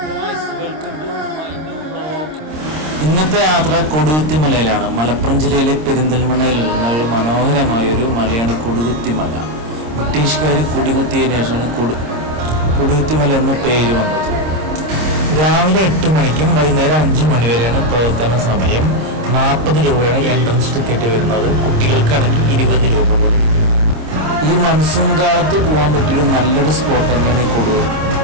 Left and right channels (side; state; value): left; late; 26 ms